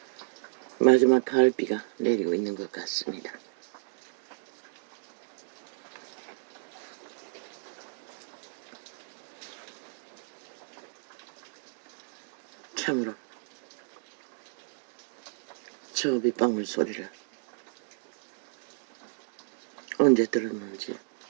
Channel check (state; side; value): silent; left; digital silence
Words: 마지막 가을비가 내리고 있는 것 같습니다. 참으로 저 빗방울 소리를 언제 들었는지